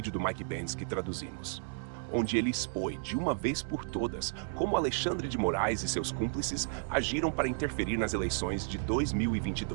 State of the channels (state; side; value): silent; left; 56 dB below the other